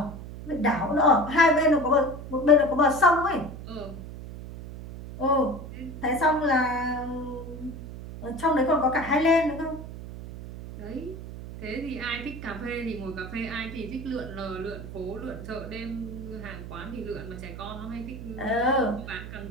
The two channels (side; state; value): right; noise; hum, 11 dB below the sound